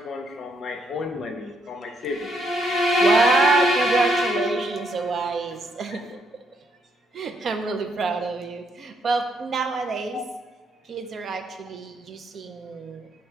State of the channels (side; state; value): both; normal; correlation 0.74